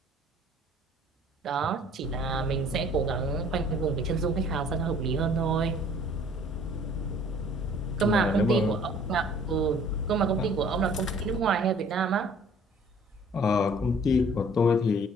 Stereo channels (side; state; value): both; normal; correlation 0.53